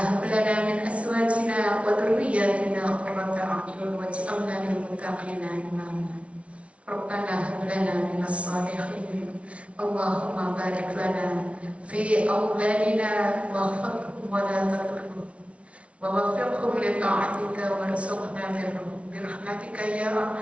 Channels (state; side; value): late; left; 0.062 ms